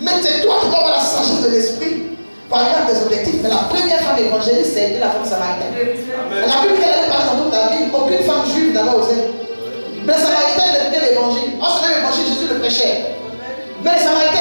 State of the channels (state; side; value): inverted; both; correlation -1.00